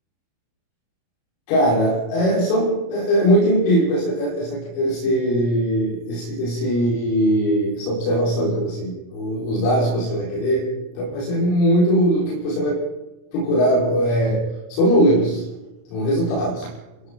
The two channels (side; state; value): right; late; 34 ms